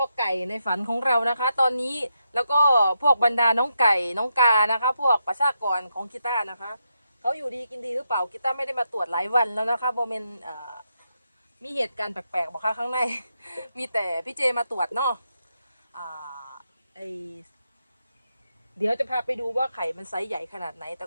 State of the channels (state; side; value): inverted; both; correlation -0.83